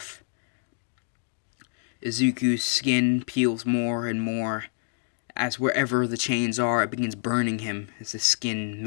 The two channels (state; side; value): silent; right; digital silence